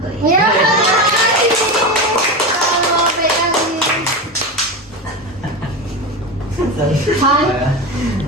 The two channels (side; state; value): both; normal; correlation 0.20